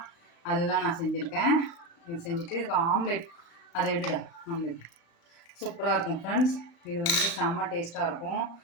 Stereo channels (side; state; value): right; late; 35 ms